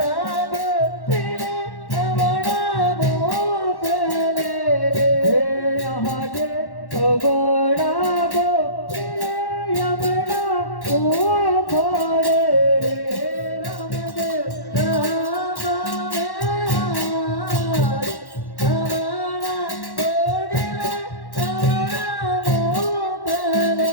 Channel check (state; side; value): late; right; 1.1 ms